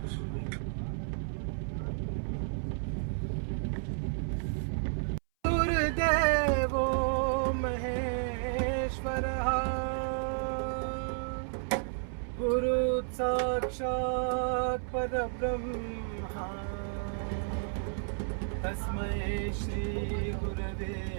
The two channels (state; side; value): silent; left; 56 dB below the other